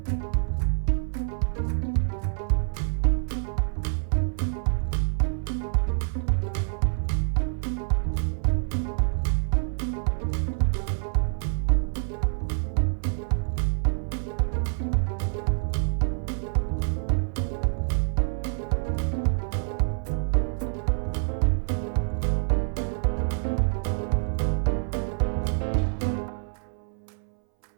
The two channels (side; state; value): left; silent; 60 dB below the other